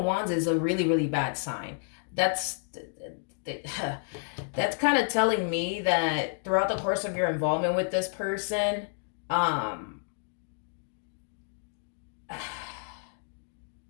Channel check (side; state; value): right; silent; digital silence